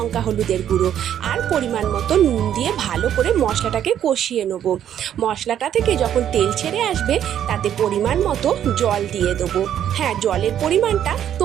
হলুদের গুঁড়ো আর পরিমাণ মতো নুন দিয়ে ভালো করে মশলাটাকে কষিয়ে নেব। মশলাটা থেকে যখন তেল ছেড়ে আসবে তাতে পরিমাণ মতো জল দিয়ে দেবো। হ্যাঁ, জলের পরিমাণটা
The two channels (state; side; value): quieter; left; 10.2 dB